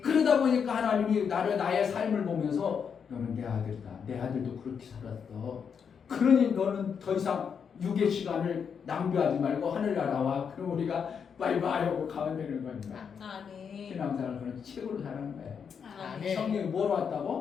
그러다 보니까 하나님이 나의 삶을 보면서 너는 내 아들이다. 내 아들도 그렇게 살았어. 그러니 너는 더 이상 육의 시간을 낭비하지 말고 하늘나라와 그럼 우리가 바이바이 하고 가면 되는 겁니다. 아멘. 신앙생활을 그런 책으로 사는 거예요. 아멘. 성령이 뭐로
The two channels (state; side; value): quieter; right; 6.8 dB